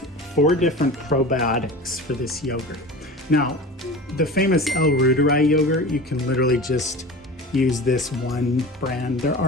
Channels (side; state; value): both; normal; correlation 0.34